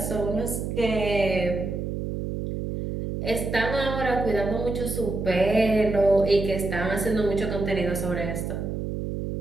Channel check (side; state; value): right; noise; hum, 4 dB below the sound